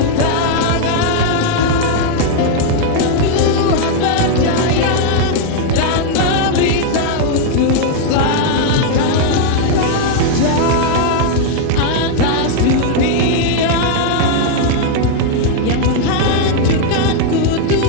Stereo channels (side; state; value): both; different; correlation 0.00